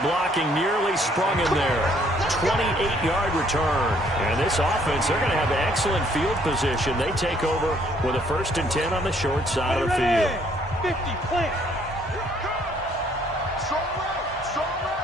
nearly sprung in there. 28-yard return. And this offense, they're going to have excellent field position. They take over with a 1st and 10 on the short side of the field. 50, plant.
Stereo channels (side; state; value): both; normal; correlation 0.64